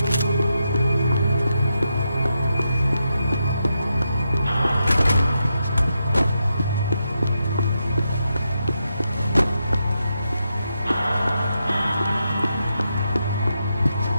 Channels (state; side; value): inverted; both; correlation -0.85